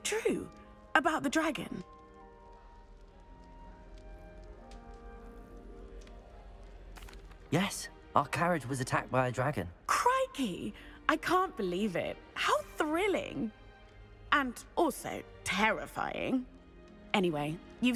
true? About the dragon? Yes, our carriage was attacked by a dragon. Crikey! I can't believe it. How thrilling! And also terrifying. Anyway, you've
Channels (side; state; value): both; identical; correlation 1.00